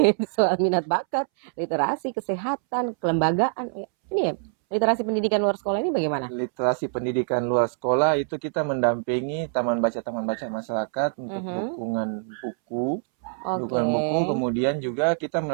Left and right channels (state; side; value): silent; left; 62 dB below the other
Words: soal minat bakat, literasi, kesehatan, kelembagaan. Ini ya, literasi pendidikan luar sekolah ini bagaimana? Literasi pendidikan luar sekolah itu kita mendampingi taman baca masyarakat untuk dukungan buku. Kemudian juga kita